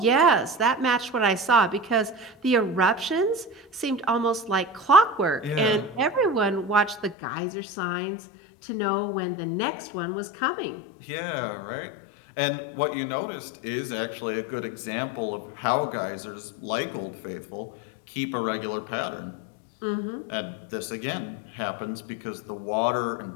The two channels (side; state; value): right; drops out; at 7.2 s